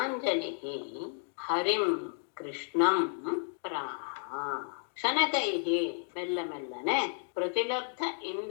ಹರಿಂ ಕೃಷ್ಣಂ ಪ್ರಾಹ. ಶನಕೈಹಿ ಮೆಲ್ಲ ಮೆಲ್ಲನೆ ಪ್ರತಿಲಬ್ಧ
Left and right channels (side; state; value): right; silent; 56 dB below the other